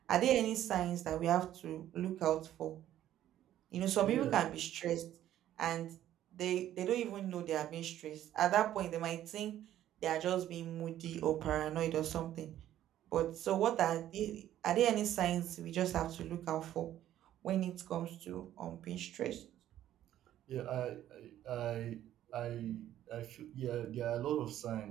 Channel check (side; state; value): left; quieter; 12.3 dB